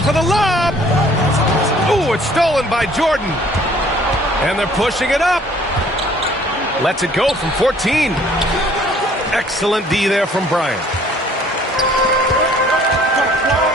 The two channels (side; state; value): both; normal; correlation 0.57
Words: the lob. Ooh, it's stolen by Jordan. And they're pushing it up. Lets it go from 14. Excellent D there from Bryant.